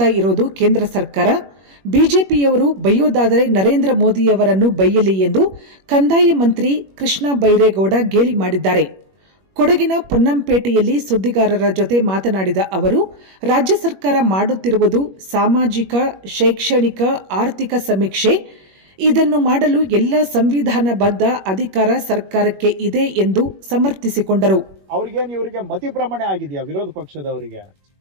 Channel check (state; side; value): late; left; 21 ms